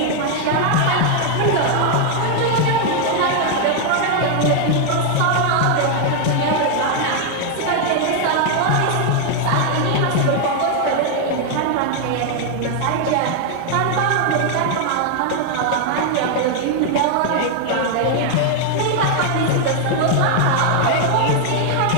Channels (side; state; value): both; different; correlation 0.00